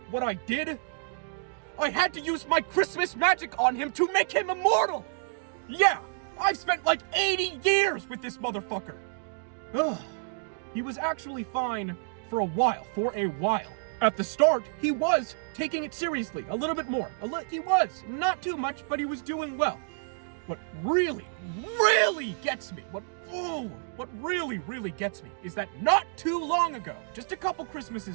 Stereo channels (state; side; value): silent; left; digital silence